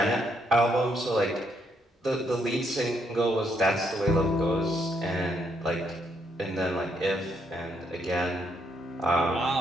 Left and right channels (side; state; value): both; normal; correlation 0.74